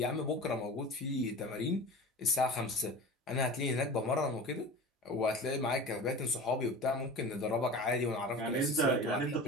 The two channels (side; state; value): both; normal; correlation 0.35